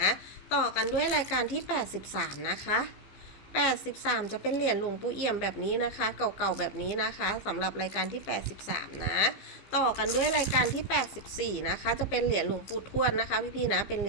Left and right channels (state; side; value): late; right; 15 ms